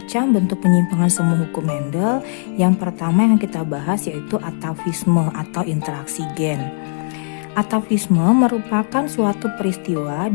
bentuk penyimpangan semu hukum Mendel. Yang pertama yang kita bahas yaitu atavisme atau interaksi gen. Atavisme merupakan suatu peristiwa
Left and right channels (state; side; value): silent; right; digital silence